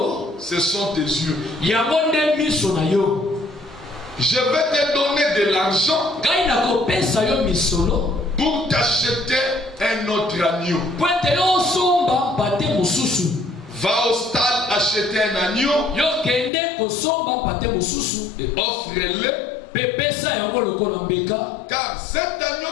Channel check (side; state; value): right; drops out; at 16.5 s